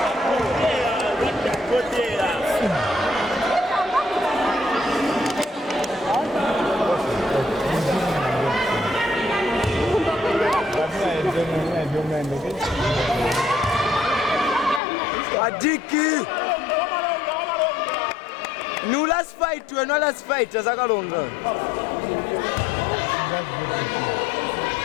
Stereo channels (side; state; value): right; drops out; at 14.8 s